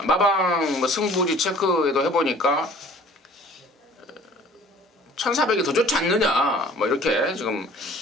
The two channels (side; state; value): both; normal; correlation 0.50